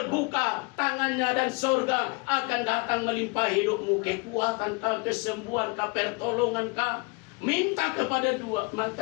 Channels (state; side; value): quieter; right; 30.1 dB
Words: tangannya, dan surga akan datang melimpahi hidupmu. Kekuatan kah, kesembuhan kah, pertolongan kah. Minta kepada